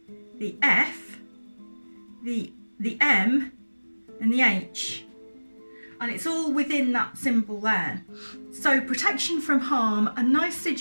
the F, the M, and the H. and it's all within that symbol there. So protection from harm, a nice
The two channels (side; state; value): both; inverted; correlation -1.00